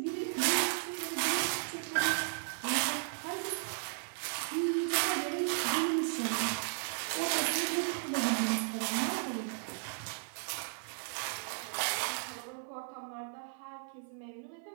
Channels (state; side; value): silent; left; 54 dB below the other